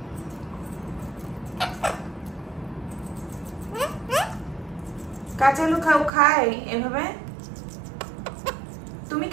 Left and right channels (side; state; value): left; drops out; at 6.1 s